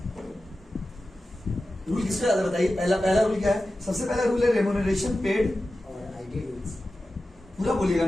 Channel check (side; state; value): both; normal; correlation 0.94